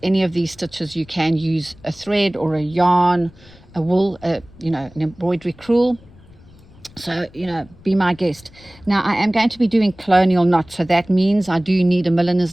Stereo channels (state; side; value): noise; left; rumble, 24 dB below the sound